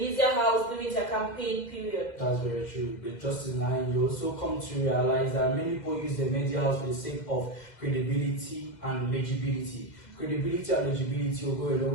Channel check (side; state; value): right; late; 2.1 ms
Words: house during their campaign period. That's very true. But just in line, you also come to realize that many people use the media house for the sake of credibility and legibility. Credibility and legibility will go a